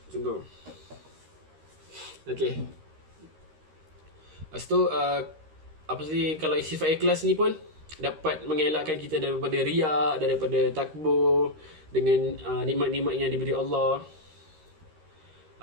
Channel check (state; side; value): late; left; 13 ms